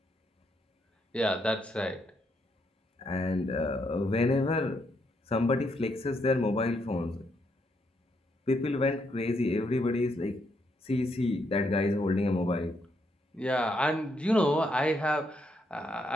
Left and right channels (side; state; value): both; normal; correlation 0.77